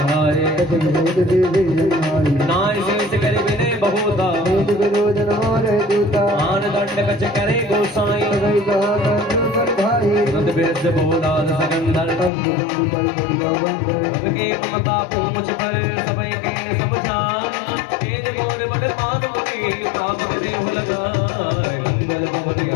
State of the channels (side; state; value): right; drops out; at 12.3 s